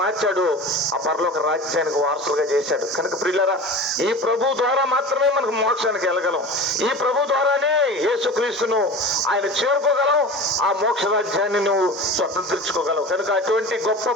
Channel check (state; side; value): normal; both; correlation 0.34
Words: మార్చాడు. ఆ పరలోక రాజ్యానికి వారసులుగా చేశాడు. కనుక ప్రియులారా, ఈ ప్రభు ద్వారా మాత్రమే మనకు మోక్షానికి వెళ్ళగలం. ఈ ప్రభు ద్వారానే యేసుక్రీస్తును ఆయన చేరుకోగలం. ఆ మోక్ష రాజ్యాన్ని నువ్వు స్వతంత్రించుకోగలవు. కనుక అటువంటి గొప్ప